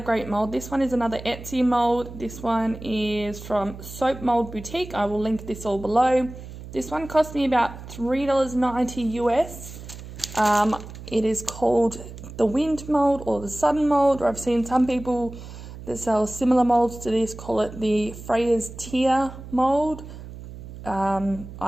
mould. This one is another Etsy mould. This one is from Soap Mould Boutique. I will link this all below. This one cost me about $3.90 US. It is called the Wind Mould or the Sun Mould, or I've seen some people that sell similar moulds to this call it the Freya's Tear mould.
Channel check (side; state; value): right; noise; hum, 13 dB below the sound